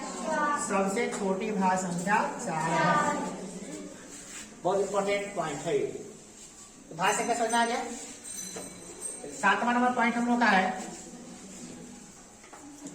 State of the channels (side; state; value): both; identical; correlation 1.00